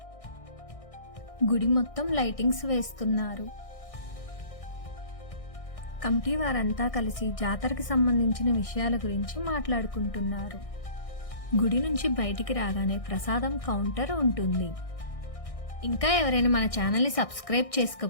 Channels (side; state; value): right; late; 1.6 ms